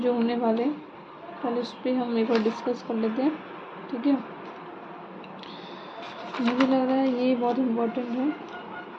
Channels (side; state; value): both; identical; correlation 1.00